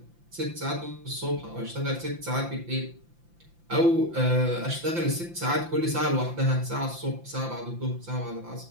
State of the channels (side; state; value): left; late; 5.8 ms